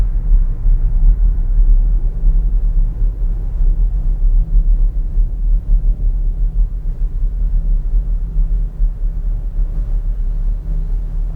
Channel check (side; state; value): both; identical; correlation 1.00